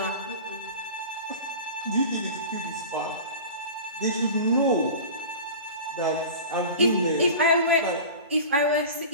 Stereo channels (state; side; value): inverted; both; correlation -0.35